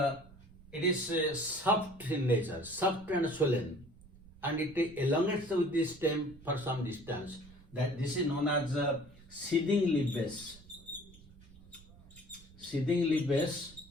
it is soft in nature, soft and swollen, and it elongates with the stem for some distance. That this is known as seeding leaf base. Seeding leaf base,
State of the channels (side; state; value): right; noise; rumble, 22 dB below the sound